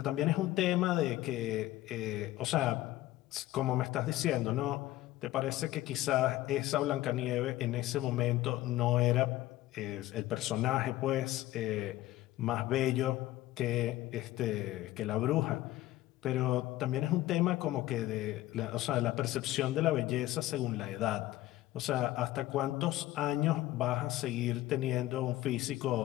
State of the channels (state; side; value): quieter; right; 15.8 dB